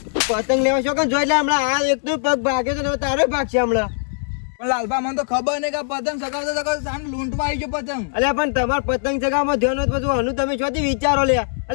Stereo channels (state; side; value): silent; right; digital silence